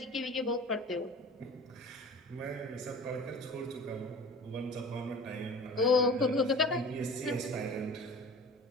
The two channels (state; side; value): normal; both; correlation 0.40